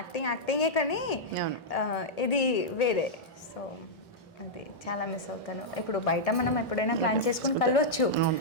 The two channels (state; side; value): normal; both; correlation -0.07